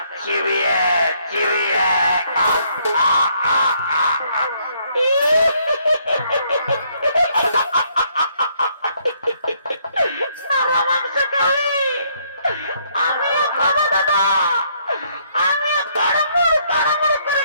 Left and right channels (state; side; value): inverted; both; correlation -0.69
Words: চিবিয়ে চিবিয়ে আমিও খাবো দাদা, আমিও তাড়াতাড়ি তাড়াতাড়ি করে